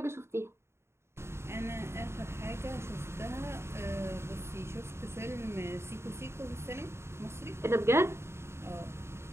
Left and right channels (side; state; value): left; late; 0.13 ms